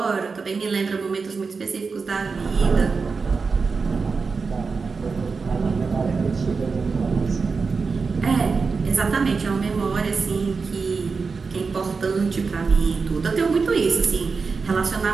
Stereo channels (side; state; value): left; quieter; 4.8 dB